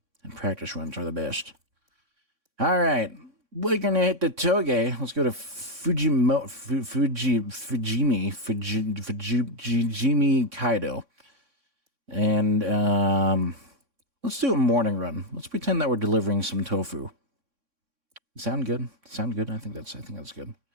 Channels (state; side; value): late; left; 3.6 ms